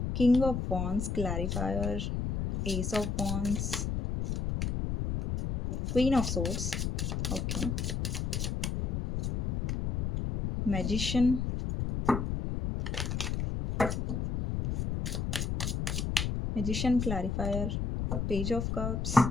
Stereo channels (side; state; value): left; noise; rumble, 1 dB below the sound